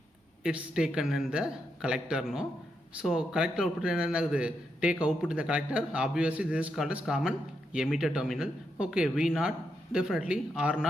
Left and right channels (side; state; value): both; normal; correlation 0.82